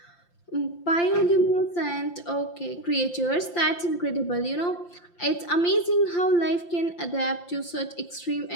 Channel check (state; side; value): late; right; 5.8 ms